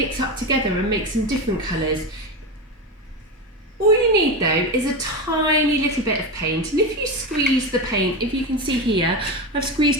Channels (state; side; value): normal; both; correlation 0.18